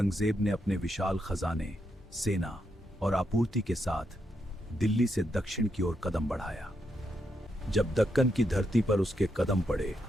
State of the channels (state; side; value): normal; both; correlation 0.81